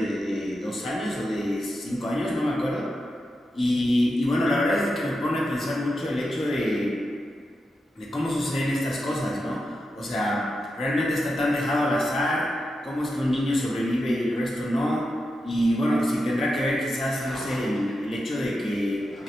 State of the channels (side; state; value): both; normal; correlation 0.88